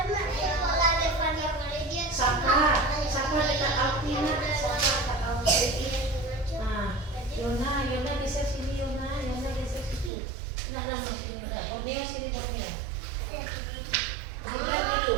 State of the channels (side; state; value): left; drops out; at 10.1 s